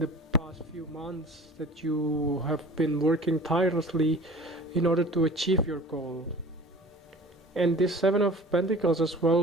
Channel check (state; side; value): normal; both; correlation 0.44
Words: past few months, that you have been working tirelessly in order to achieve your goal. And this Seven of Pentacles as